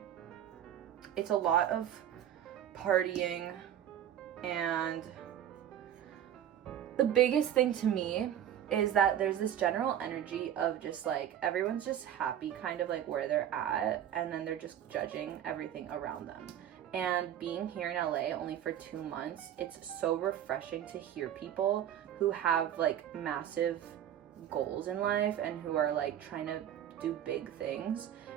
it's a lot of partying. And the biggest thing to me is that there's this general energy of just, like, everyone's just happy kind of, like, where they're at. And then they're just judging everything around them. And being here in LA only for 2 months, it's so refreshing to hear people who have, like, massive goals in life and who are, like, trying to do big things.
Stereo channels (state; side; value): quieter; left; 10.5 dB